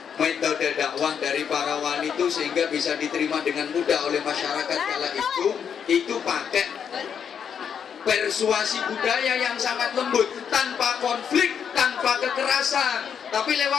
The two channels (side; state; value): right; quieter; 7.6 dB